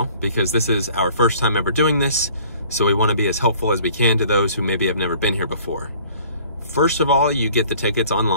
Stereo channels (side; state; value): both; inverted; correlation -0.53